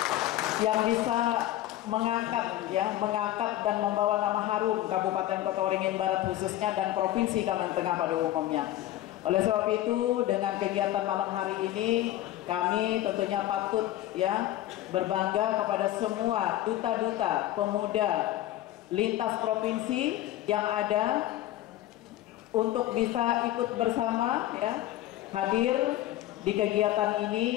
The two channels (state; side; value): quieter; right; 14.3 dB